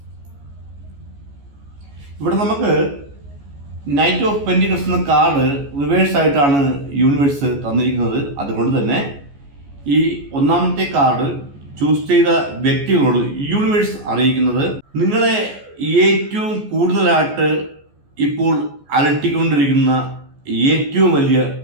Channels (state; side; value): late; left; 14 ms